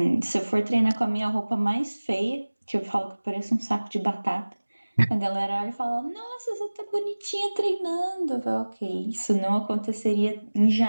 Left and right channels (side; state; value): both; inverted; correlation -1.00